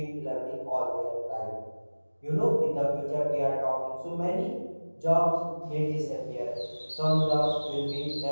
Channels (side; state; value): both; inverted; correlation -1.00